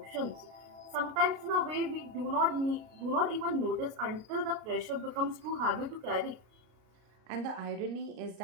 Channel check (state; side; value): late; left; 33 ms